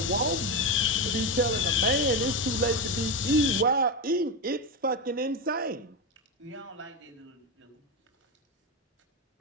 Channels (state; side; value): normal; both; correlation 0.14